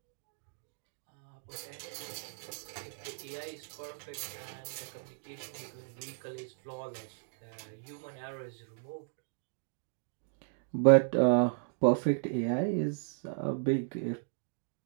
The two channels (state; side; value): silent; left; digital silence